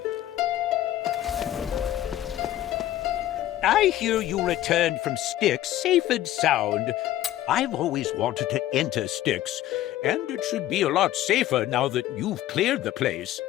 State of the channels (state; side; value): quieter; right; 13.6 dB